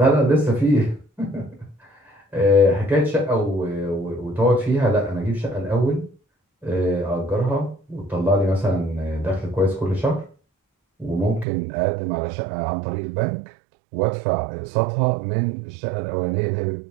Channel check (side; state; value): left; drops out; at 11.5 s